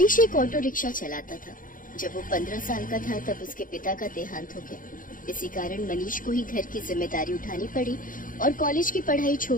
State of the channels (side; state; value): right; late; 0.39 ms